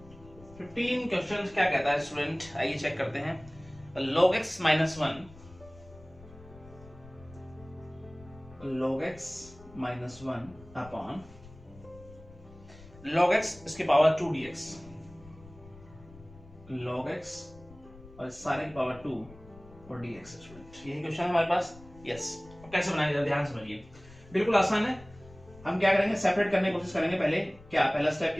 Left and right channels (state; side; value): noise; left; rumble, 21 dB below the sound